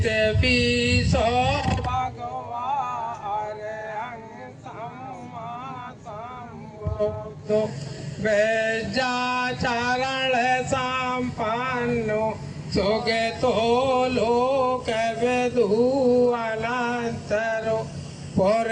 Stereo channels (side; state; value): both; identical; correlation 1.00